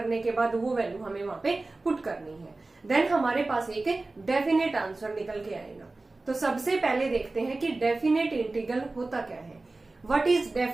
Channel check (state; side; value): quieter; left; 3.2 dB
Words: के बाद वो वैल्यू हमें वहां पे पुट करनी है. देन हमारे पास एक डेफिनेट आंसर निकल के आएगा. तो सबसे पहले देखते हैं कि डेफिनेट इंटीग्रल होता क्या है. What is